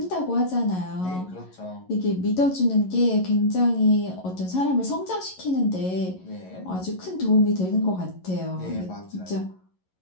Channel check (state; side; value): late; right; 11 ms